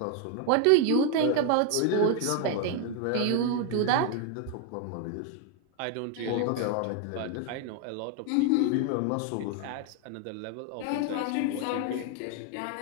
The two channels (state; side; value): different; both; correlation 0.01